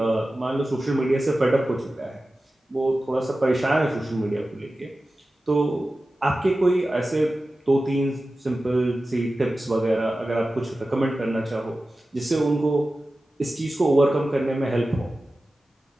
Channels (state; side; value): normal; both; correlation 0.95